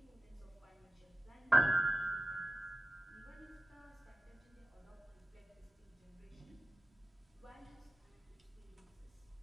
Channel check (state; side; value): normal; both; correlation 0.94